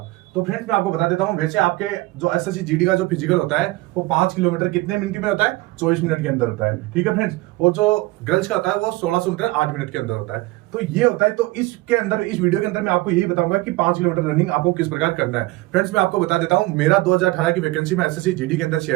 तो फ्रेंड्स, मैं आपको बता देता हूं, वैसे आपके जो एसएससी जीडी का जो फिजिकल होता है वो 5 किलोमीटर कितने मिनट में होता है? 24 मिनट के अंदर होता है। ठीक है फ्रेंड्स, और जो गर्ल्स का होता है वो 1600 मीटर 8 मिनट के अंदर होता है। तो ये होता है। तो इसके अंदर, इस वीडियो के अंदर मैं आपको यही बताऊंगा कि 5 किलोमीटर रनिंग आपको किस प्रकार करना है। फ्रेंड्स, मैं आपको बता देता हूं, मेरा 2018 की वैकेंसी में एसएससी जीडी के अंदर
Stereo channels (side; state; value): left; quieter; 20.2 dB